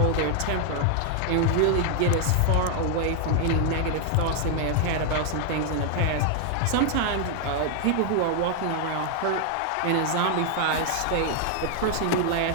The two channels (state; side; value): different; both; correlation 0.00